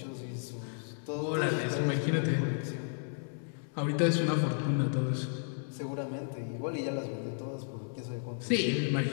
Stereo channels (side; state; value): right; silent; digital silence